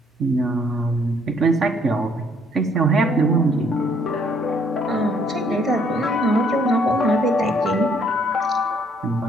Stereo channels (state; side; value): normal; both; correlation 0.65